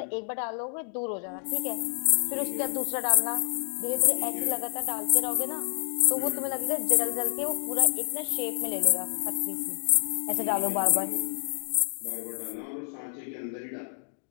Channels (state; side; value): silent; right; digital silence